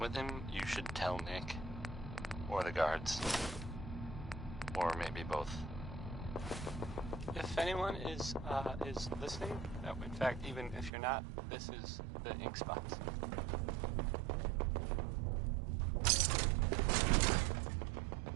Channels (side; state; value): left; drops out; at 10.9 s